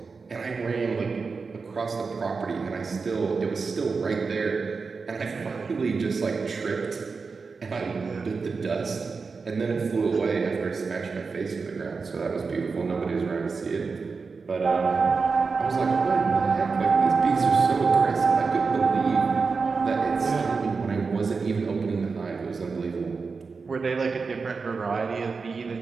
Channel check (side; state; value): left; quieter; 4.7 dB